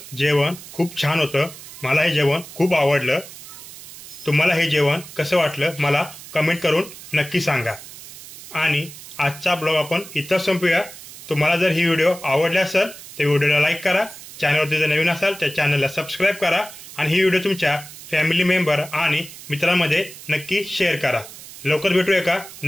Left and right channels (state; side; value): noise; right; hiss, 15 dB below the sound